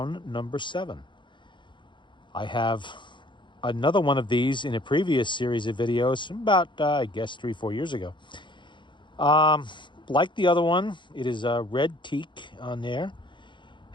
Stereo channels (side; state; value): right; late; 0.23 ms